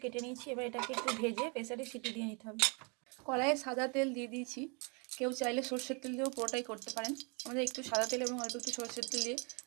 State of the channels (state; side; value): quieter; left; 33.5 dB